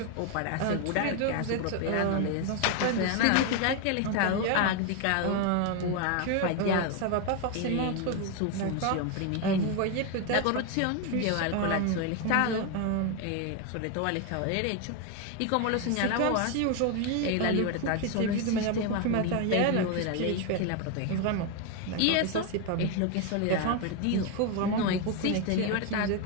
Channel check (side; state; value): both; different; correlation 0.01